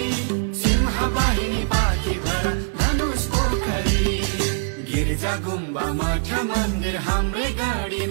सिंहबारी बाँकी भरा धनुष पोखरी गिर्जा गुम्बा मठ मन्दिर हाम्रै गढी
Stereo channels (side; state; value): left; silent; digital silence